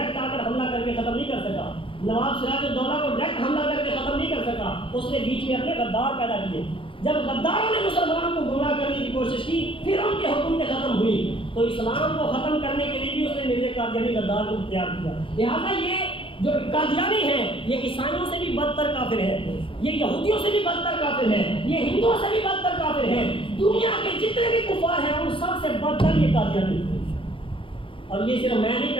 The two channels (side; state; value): right; late; 0.25 ms